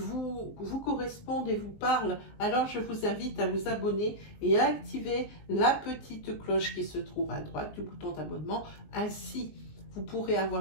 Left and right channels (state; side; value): late; right; 19 ms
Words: correspondent et vous parlent, alors je vous invite à vous abonner et à activer la petite cloche qui se trouve à droite du bouton d'abonnement. Ainsi, vous pourrez avoir